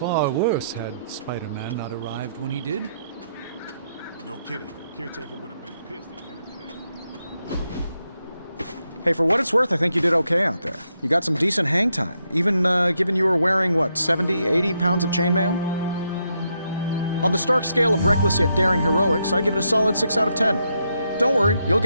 worse had Spider-Man not arrived when he did. No kidding. Caretaker would have been pissed if Hey, for what it's worth, I think you did okay out there. You got some decent hang time, even given you were wearing, what, 70, 80 pounds of chainmail? On the Stark scale of reckless yet daring heroics, I give it a solid 6 out of 10. Don't worry, you'll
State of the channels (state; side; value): inverted; both; correlation -0.80